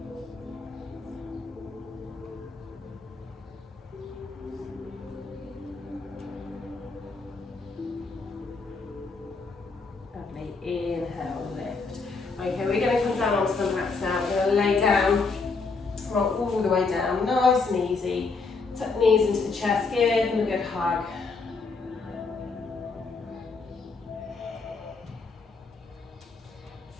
Lovely, inhale, lift. Okay, we're going to come down onto the mats now. We're going to lay down, roll all the way down, nice and easy. Tuck knees into the chest, give them a good hug.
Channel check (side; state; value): right; quieter; 4.3 dB